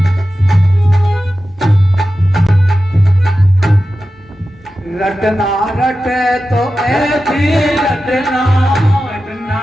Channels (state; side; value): normal; both; correlation 0.93